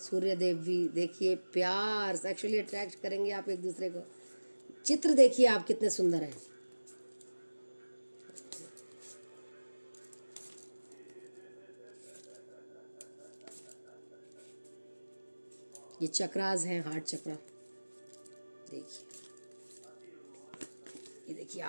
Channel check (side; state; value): both; inverted; correlation -1.00